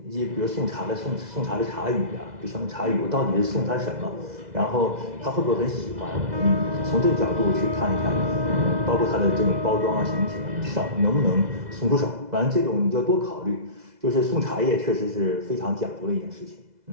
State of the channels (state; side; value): late; left; 2.0 ms